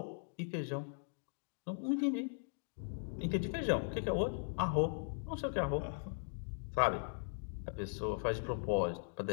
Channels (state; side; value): silent; right; digital silence